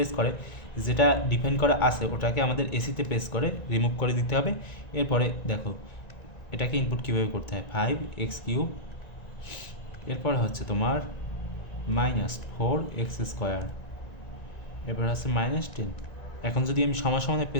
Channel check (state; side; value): late; right; 1.9 ms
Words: করে যেটা ডিফাইন করা আছে ওটাকে আমাদের এসিতে প্রেস করে রিমুভ করে দিতে হবে। এরপরে দেখো এটাকে ইনপুট কীভাবে করতে হয়, 5x3, এরপর হচ্ছে তোমার -4x², এরপর হচ্ছে -10। এখন যদি আমি সমানে